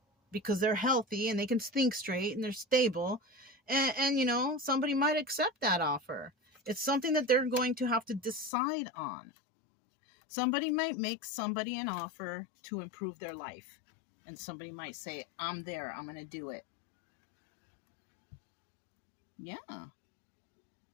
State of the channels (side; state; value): right; drops out; at 8.5 s